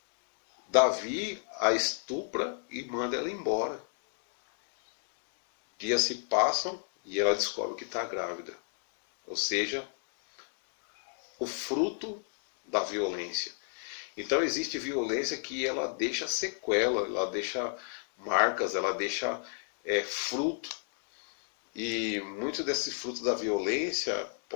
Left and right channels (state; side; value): silent; right; 56 dB below the other